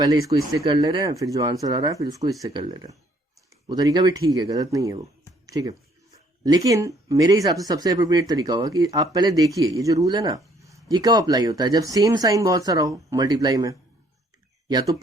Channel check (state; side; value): normal; both; correlation 0.64